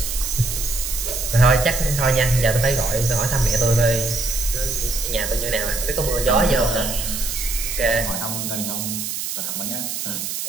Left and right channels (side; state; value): right; noise; hiss, 4 dB below the sound